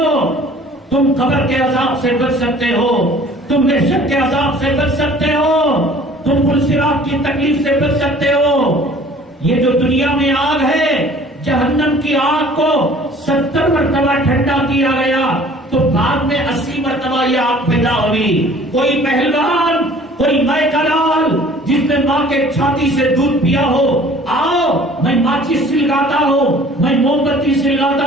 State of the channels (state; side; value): normal; both; correlation 0.50